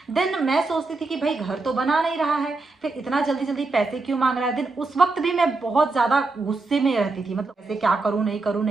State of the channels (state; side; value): quieter; left; 3.5 dB